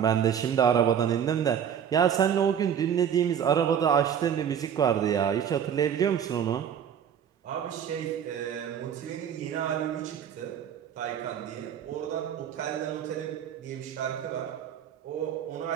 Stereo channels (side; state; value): left; quieter; 8.6 dB